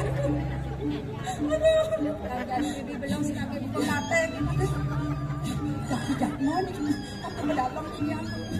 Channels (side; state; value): both; identical; correlation 1.00